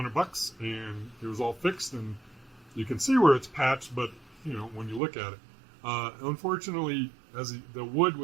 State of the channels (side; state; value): left; drops out; at 5.0 s